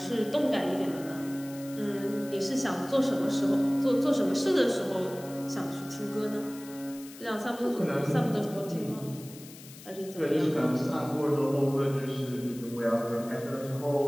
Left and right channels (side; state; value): left; noise; hiss, 18 dB below the sound